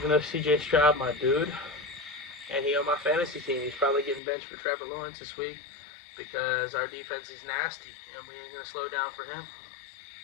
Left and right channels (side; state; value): right; drops out; at 4.2 s